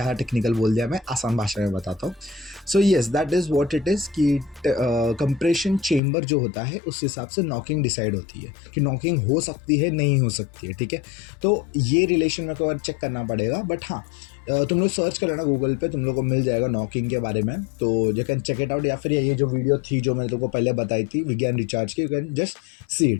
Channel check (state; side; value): drops out; right; at 6.0 s